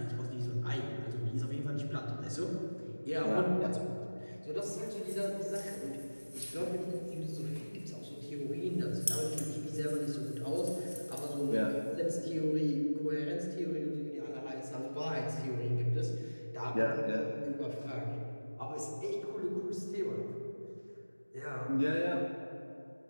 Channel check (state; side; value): inverted; both; correlation -1.00